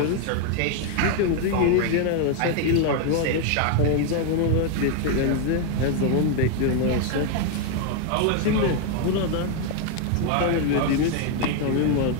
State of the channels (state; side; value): different; both; correlation 0.00